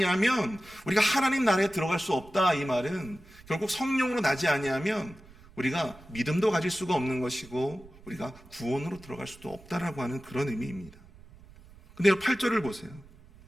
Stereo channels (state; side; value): noise; right; rumble, 23 dB below the sound